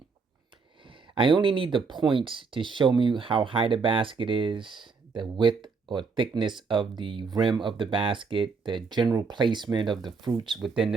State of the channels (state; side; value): quieter; left; 4.9 dB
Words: I only need the points to show me how high the basket is, the width or thickness of the rim of the basket, the general placement of the fruits within the